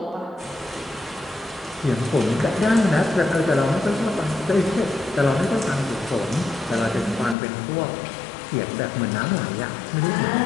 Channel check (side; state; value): right; drops out; at 7.4 s